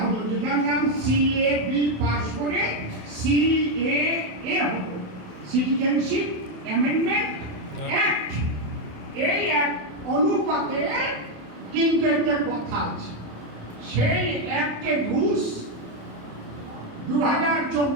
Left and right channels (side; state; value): left; late; 27 ms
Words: হলো, যেটার নাম সিএবি পাশ করে সিএএ হলো, সিটিজেনশিপ অ্যামেন্ডমেন্ট অ্যাক্ট। এই অ্যাক্ট অনুপাতে কিন্তু একটা কথা আছে, সেই অ্যাক্টের রুলস